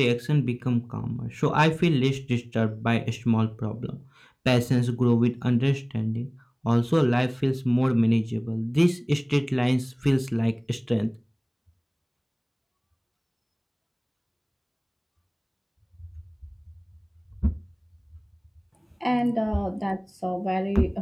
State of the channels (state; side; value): identical; both; correlation 1.00